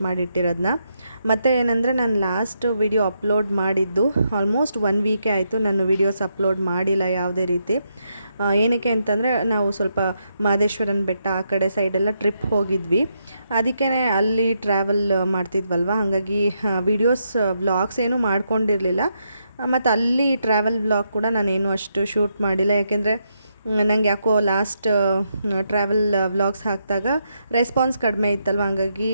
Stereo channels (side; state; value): both; inverted; correlation -0.80